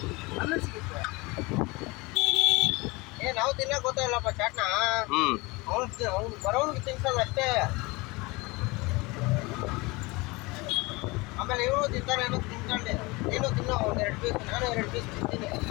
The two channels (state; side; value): quieter; right; 24.4 dB